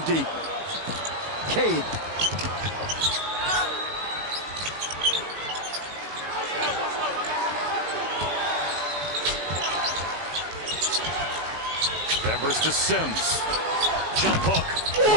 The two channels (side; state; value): left; late; 18 ms